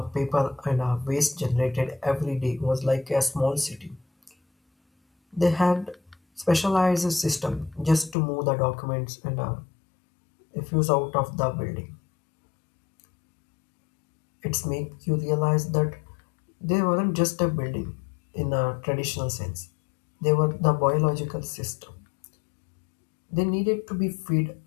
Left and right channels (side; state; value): right; drops out; at 8.2 s